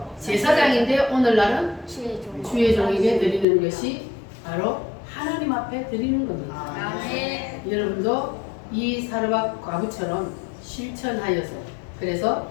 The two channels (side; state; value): right; drops out; at 3.5 s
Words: 제사장인데, 오늘날은 주의 종에게 드리는 것이 바로 하나님 앞에 드리는 겁니다. 여러분도 이 사르밧 과부처럼 실천하여서 그래서